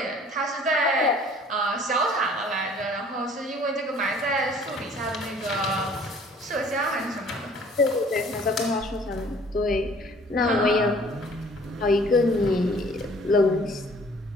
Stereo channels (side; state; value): both; normal; correlation 0.54